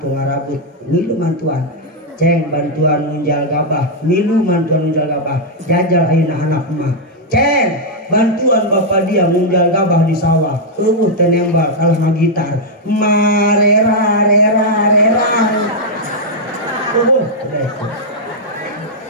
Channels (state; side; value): normal; both; correlation -0.04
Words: tu ngarabut ngilu mantuan ceng bantuan munjal gabah milu bantuan munjal gabah jajal ayeuna anak emak ceng bantuan bapak dia munjal gabah di sawah teh nembal kalah magitar marera